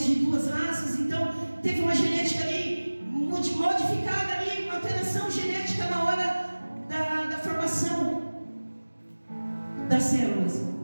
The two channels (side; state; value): both; inverted; correlation -1.00